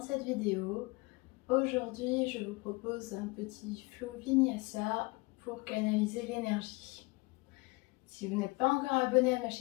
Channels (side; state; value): right; quieter; 25.4 dB